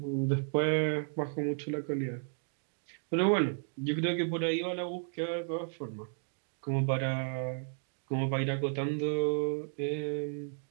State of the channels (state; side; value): silent; left; 55 dB below the other